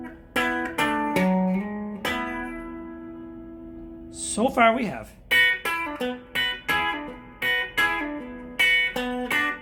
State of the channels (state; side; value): identical; both; correlation 1.00